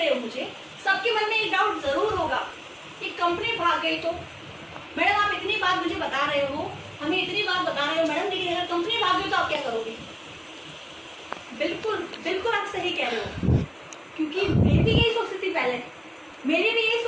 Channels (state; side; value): identical; both; correlation 1.00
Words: हो, मुझे सबके मन में एक डाउट जरूर होगा कि कंपनी भाग गई तो मैडम आप इतनी बात मुझे बता रहे हो, हमें इतनी बात बता रहे हो मैडम, लेकिन अगर कंपनी भाग गई तो आप क्या करोगे? बिल्कुल बिल्कुल आप सही कह रहे हो, क्योंकि मैं भी यही सोचती थी पहले, मेरी भी यही